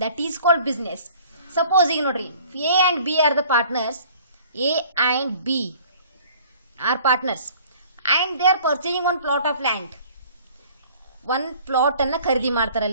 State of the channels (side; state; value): both; inverted; correlation -0.52